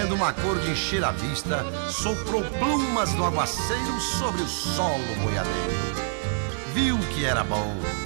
uma cor de encher a vista, soprou plumas no aguaceiro sobre o solo boiadeiro. Viu que era bom,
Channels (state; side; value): silent; left; digital silence